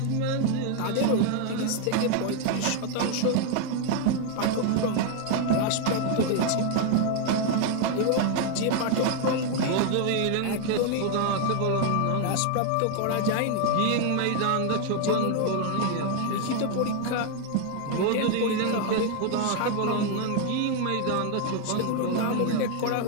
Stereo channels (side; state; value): both; different; correlation 0.00